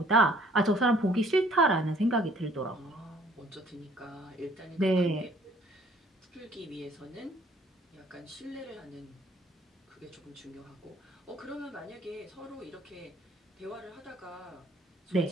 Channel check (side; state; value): both; normal; correlation 0.58